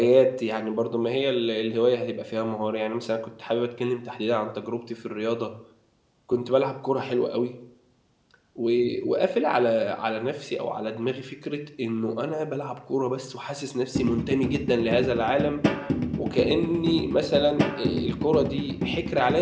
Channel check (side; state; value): both; identical; correlation 1.00